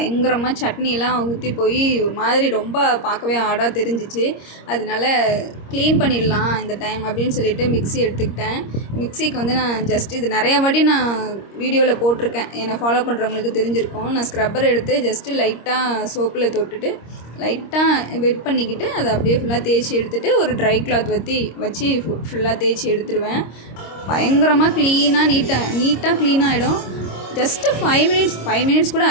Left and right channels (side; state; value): right; late; 26 ms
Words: சட்னியெல்லாம் ஊற்றி போய் ஒரு மாதிரி ரொம்ப பார்க்கவே ஆடாக தெரிஞ்சிச்சு. அதனால க்ளீன் பண்ணிடலாம் இந்த டைம் அப்படின்னு சொல்லிட்டு மிக்ஸி எடுத்துக்கிட்டேன். மிக்ஸிக்கு வந்து நான் ஜஸ்ட் இது நிறையா வாட்டி நான் வீடியோவில் போட்டிருக்கேன், என்னை ஃபாலோ பண்ணுறவங்களுக்கு தெரிஞ்சிருக்கும். நான் ஸ்க்ரப்பர் எடுத்து ஜஸ்ட்டு லைட்டாக சோப்பில் தொட்டுட்டு லைட்டாக வெட் பண்ணிக்கிட்டு அதை அப்படியே ஃபுல்லாக தேய்ச்சி எடுத்துகிட்டு ஒரு ட்ரை கிளாத் வச்சு ஃபுல்லாக தேய்ச்சி எடுத்துருவேன். பயங்கரமாக நீட்டாக க்ளீன் ஆகிடும். ஜஸ்ட்டு 5 மினிட்ஸ் கூட